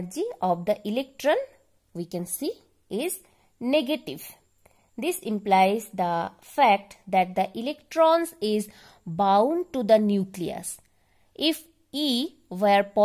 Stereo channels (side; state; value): both; identical; correlation 1.00